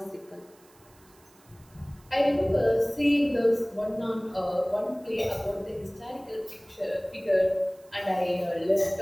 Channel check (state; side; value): noise; right; hiss, 29 dB below the sound